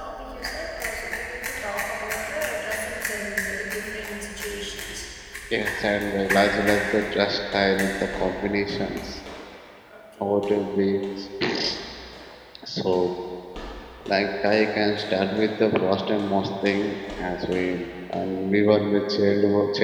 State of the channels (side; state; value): both; identical; correlation 1.00